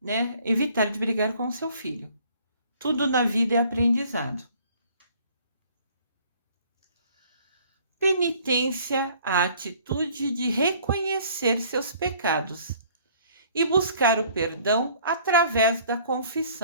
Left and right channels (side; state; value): both; inverted; correlation -0.56